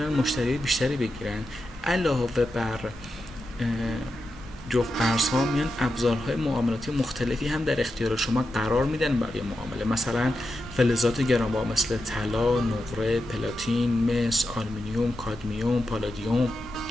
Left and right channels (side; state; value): both; normal; correlation 0.89